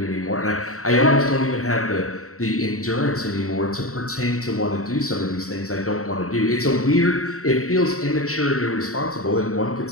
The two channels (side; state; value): right; late; 0.64 ms